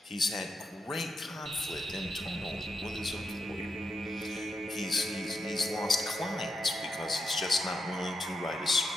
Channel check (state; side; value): normal; both; correlation 0.85